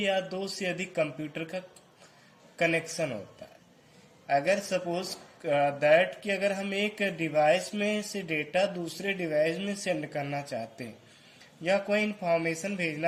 दो से अधिक कंप्यूटर का कनेक्शन होता है। अगर सपोज दैट कि अगर हम एक डिवाइस में से डेटा दूसरे डिवाइस में सेंड करना चाहते हैं या कोई इंफॉर्मेशन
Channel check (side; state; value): both; identical; correlation 1.00